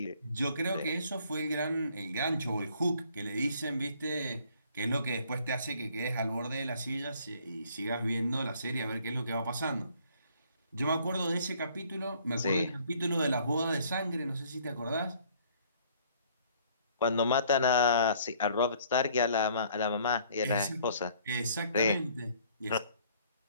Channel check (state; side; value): inverted; both; correlation -0.60